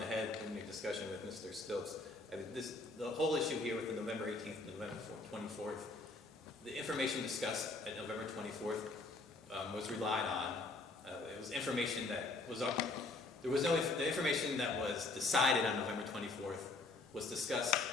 head in your discussion with Mr. Stilts. The whole issue here with the November 18th, November 24th, the information discussed at November 24th was relied on. It was information that was up. The information that was decided on November 24th was discussed,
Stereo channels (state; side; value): quieter; right; 3.3 dB